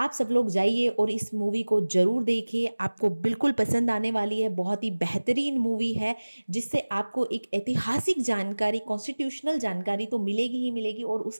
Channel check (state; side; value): inverted; both; correlation -1.00